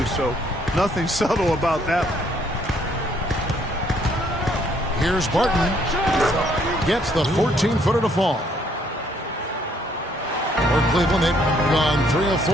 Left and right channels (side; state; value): both; normal; correlation 0.67